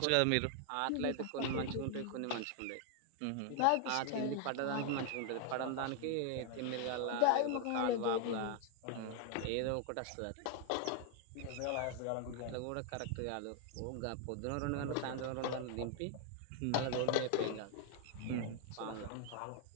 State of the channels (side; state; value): both; different; correlation 0.00